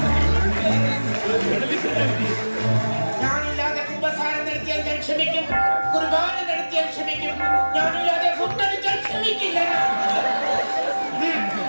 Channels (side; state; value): both; inverted; correlation -1.00